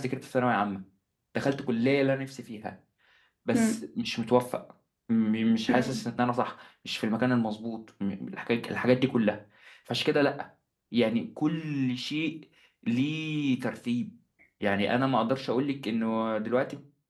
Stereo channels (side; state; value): both; identical; correlation 1.00